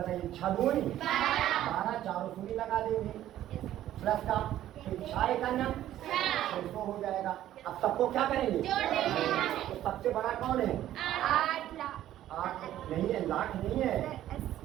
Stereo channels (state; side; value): quieter; left; 12.7 dB